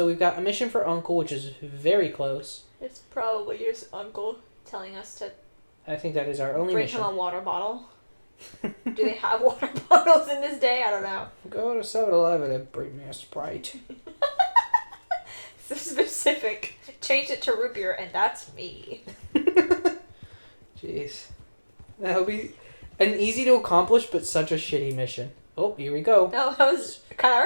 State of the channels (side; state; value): both; inverted; correlation -1.00